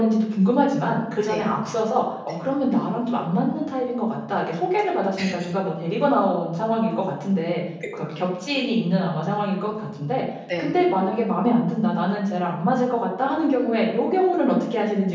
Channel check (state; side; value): identical; both; correlation 1.00